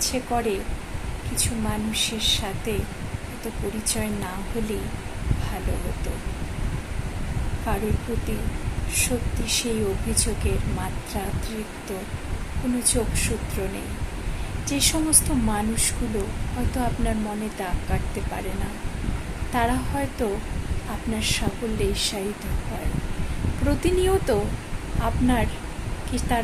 করে কিছু মানুষের সাথে হয়তো পরিচয় না হলেই ভালো হতো। কারোর প্রতি সত্যি সেই অভিযোগের মাত্রাতিরিক্ত কোনো যোগসূত্র নেই। যে সমস্ত মানুষগুলো হয়তো আপনার মনে দাগ কাটতে পারে না, তারা হয়তো আপনার সাফল্যে ঈর্ষায়িত হয়। প্রতিনিয়ত আপনার কি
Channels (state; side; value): identical; both; correlation 1.00